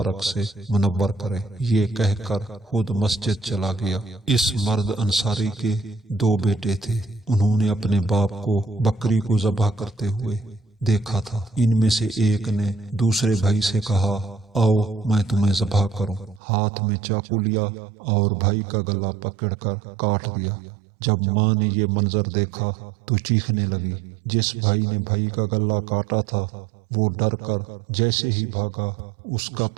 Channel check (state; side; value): drops out; left; at 16.4 s